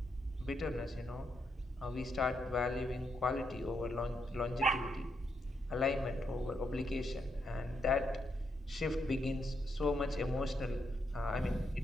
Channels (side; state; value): both; normal; correlation 0.80